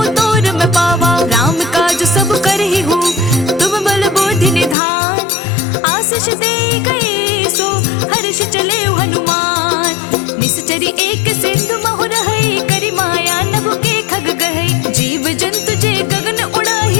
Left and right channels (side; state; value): right; drops out; at 4.8 s